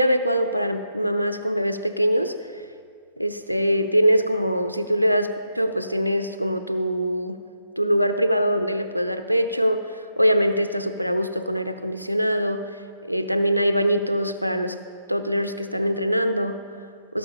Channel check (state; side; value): inverted; both; correlation -0.84